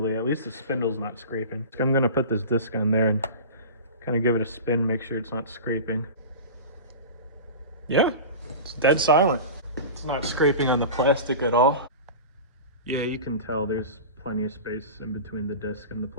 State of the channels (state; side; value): inverted; both; correlation -0.31